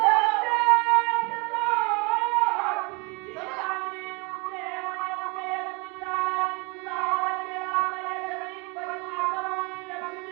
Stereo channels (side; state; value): left; quieter; 29.6 dB